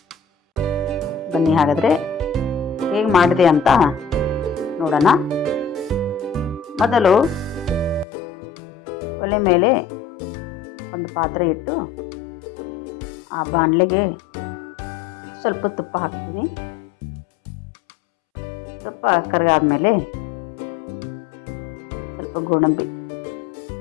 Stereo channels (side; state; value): right; drops out; at 8.1 s